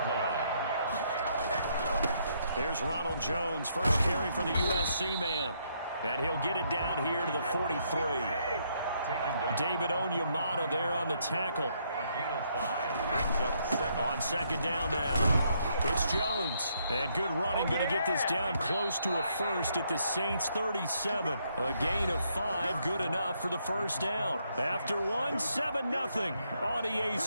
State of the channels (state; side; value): inverted; both; correlation -0.73